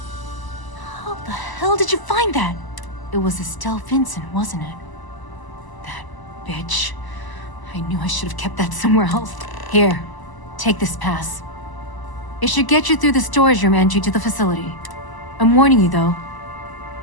How the hell did you find that? It was Estelle Vincent, wasn't it? That bitch. I knew I should have kept that somewhere else. Here, take this pass. It should get you through the storage room entry to the facility. I'm warning you though,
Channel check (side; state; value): right; late; 1.0 ms